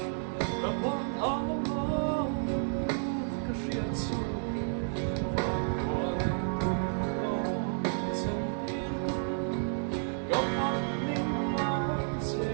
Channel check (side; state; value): left; silent; 57 dB below the other